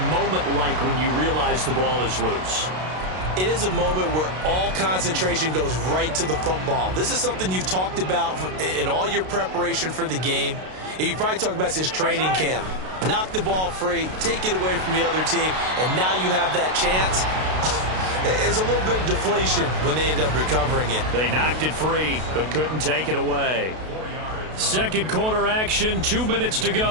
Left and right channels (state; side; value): late; left; 32 ms